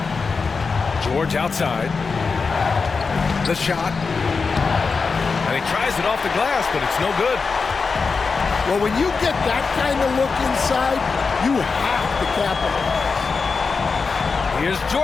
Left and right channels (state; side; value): quieter; right; 4.8 dB